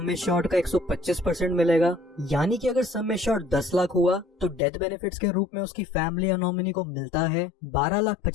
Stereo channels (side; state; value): right; drops out; at 4.6 s